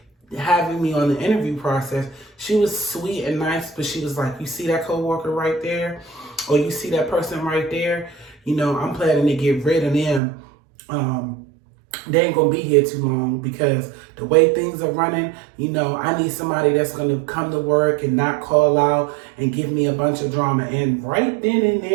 having me on the interview process, she was sweet and nice, but she was like, you see that coworker right there? Or you see that person right there? You know, I'm planning to get rid of them. They ain't gonna be here too long because the way things are running, you know, I need somebody that's gonna come to work and not call out and give me a bunch of drama. And right then and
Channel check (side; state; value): left; drops out; at 10.2 s